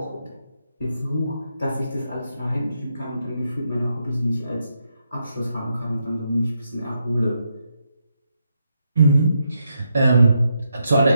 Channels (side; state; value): both; inverted; correlation -0.82